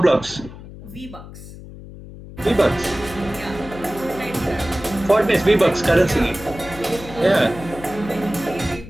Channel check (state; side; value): noise; left; hum, 15 dB below the sound